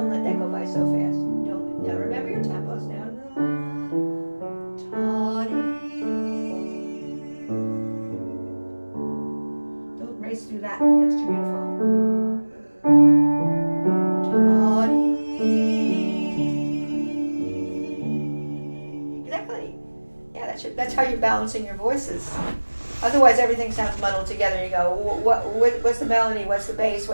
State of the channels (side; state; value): both; inverted; correlation -1.00